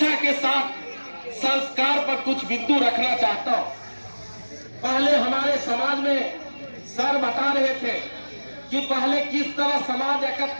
के साथ संस्कार पर कुछ बिंदु रखना चाहता हूं। पहले हमारे समाज में सर बता रहे थे कि पहले किस तरह समाज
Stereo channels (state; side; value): inverted; both; correlation -1.00